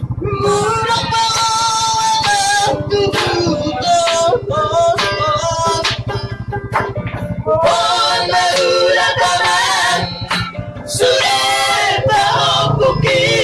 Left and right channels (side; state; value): both; identical; correlation 1.00